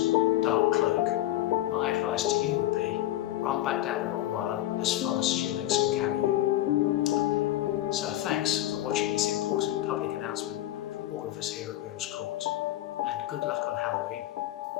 dark cloak, my advice to you would be, run back down the long mile as fast as your legs can carry you. So thanks for watching this important public announcement from all of us here at Riddle's Court, and good luck on Halloween.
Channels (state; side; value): quieter; right; 14.5 dB